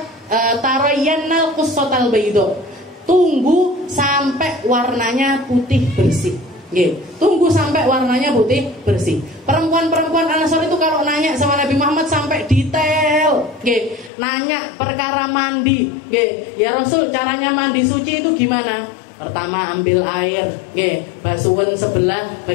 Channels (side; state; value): right; drops out; at 14.1 s